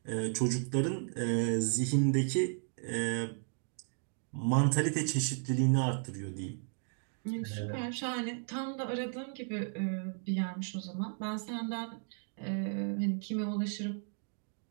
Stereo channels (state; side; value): silent; left; 55 dB below the other